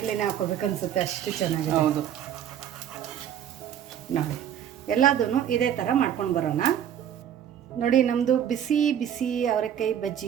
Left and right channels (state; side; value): quieter; left; 9.8 dB